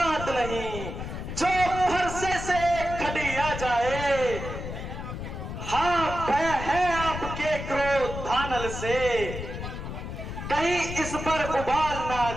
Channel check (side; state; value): left; noise; rumble, 7 dB below the sound